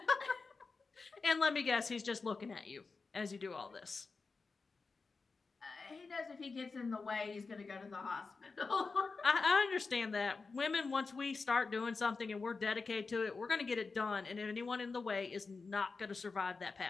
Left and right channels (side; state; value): right; quieter; 4.3 dB